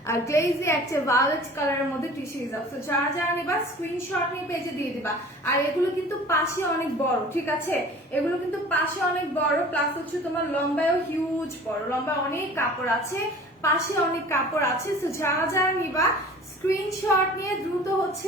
গ্লেজি একটা ভায়োলেট কালারের মধ্যে টিস্যু হিজাব। তো যারা যারা নিবা স্ক্রিনশট নিয়ে পেজে দিয়ে দিবা। আর এগুলো কিন্তু পাশে অনেক বড়, ঠিক আছে। এগুলো কিন্তু পাশে অনেক বড়, প্লাস হচ্ছে তোমার লম্বায়ও হিউজ বড়, লম্বা অনেক কাপড় আছে, পাশে অনেক কাপড় আছে। তো যারা যারা নিবা স্ক্রিনশট নিয়ে দ্রুত হচ্ছে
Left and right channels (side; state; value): both; normal; correlation 0.44